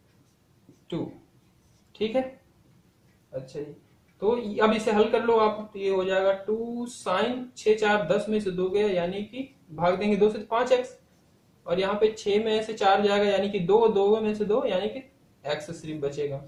2। ठीक है, अच्छा जी, तो अब इसे हल कर लो आप, तो ये हो जाएगा 2 साइन 6 4 10 में से 2 गया यानी कि भाग देंगे 2 से 5x, और यहाँ पे 6 में से 4 जाएगा यानी कि 2, 2 में से 2 यानी कि x सिर्फ बचेगा।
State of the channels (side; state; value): both; identical; correlation 1.00